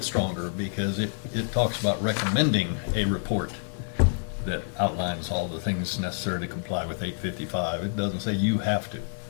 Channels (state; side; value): silent; right; digital silence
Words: stronger, because it talks about recommending a report that outlines all the things necessary to comply with 855. It doesn't say you have to.